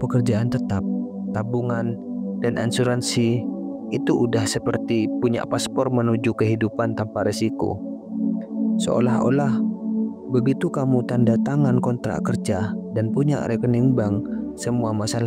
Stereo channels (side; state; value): both; identical; correlation 1.00